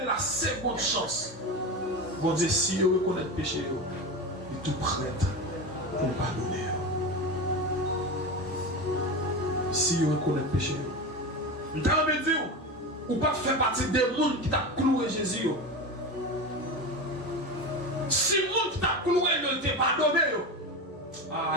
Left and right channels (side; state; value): both; normal; correlation 0.23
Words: de la seconde chance. Bon Dieu, si vous reconnaissez le péché, il est tout prêt pour pardonner. Si vous reconnaissez le péché, vous avez dit, ou pas faire partie des gens qui t'a cloué Jésus. Si les gens qui t'a cloué ne t'ont pas pardonné,